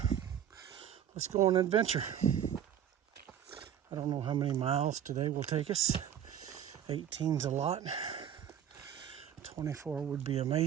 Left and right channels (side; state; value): left; quieter; 9.6 dB